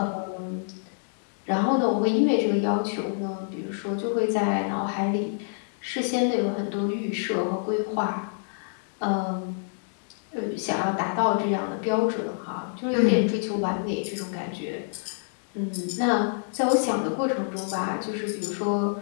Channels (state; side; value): silent; right; digital silence